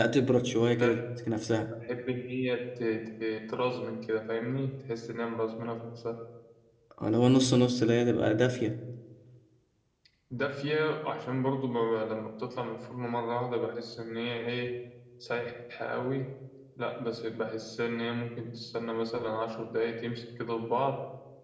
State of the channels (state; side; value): identical; both; correlation 1.00